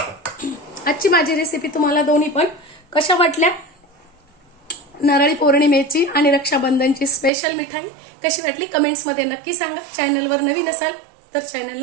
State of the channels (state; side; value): drops out; left; at 7.3 s